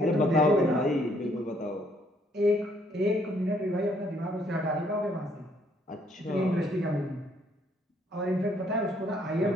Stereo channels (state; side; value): normal; both; correlation 0.67